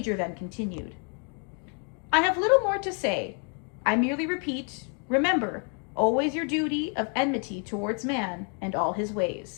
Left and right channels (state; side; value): quieter; right; 39.2 dB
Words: then continued. "I have little more to say. I merely repeat, remember always your duty of enmity towards man and all his